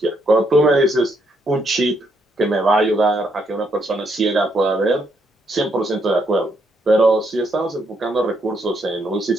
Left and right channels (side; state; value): both; normal; correlation 0.75